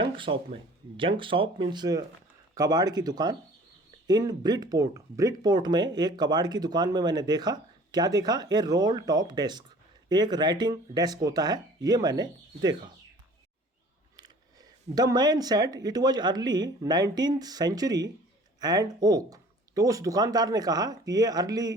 शॉप में। जंक शॉप मीन्स कबाड़ की दुकान। इन ब्रिटपोर्ट, ब्रिटपोर्ट में एक कबाड़ की दुकान में मैंने देखा। क्या देखा? ए रोल टॉप डेस्क, एक राइटिंग डेस्क होता है, ये मैंने देखा। The man said it was early 19th century and oak. तो उस दुकानदार ने कहा कि ये अर्ली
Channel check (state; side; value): normal; both; correlation 0.49